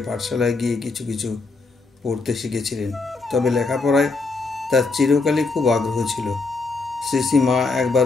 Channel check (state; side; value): quieter; right; 3.8 dB